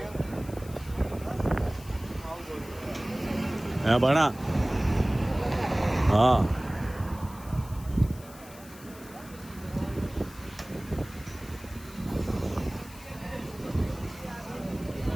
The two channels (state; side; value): noise; left; hiss, 20 dB below the sound